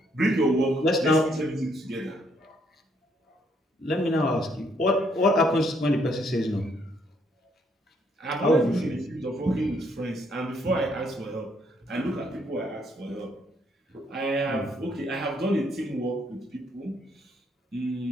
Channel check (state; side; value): normal; both; correlation 0.70